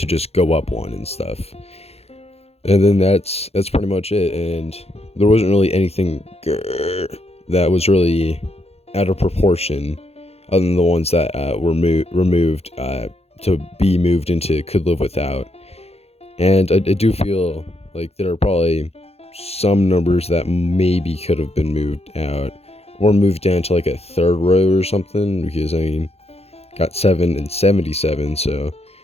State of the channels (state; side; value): late; right; 0.30 ms